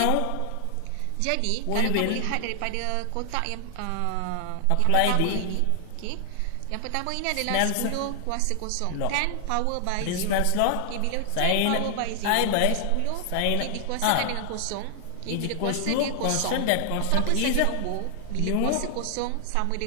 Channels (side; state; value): both; different; correlation 0.00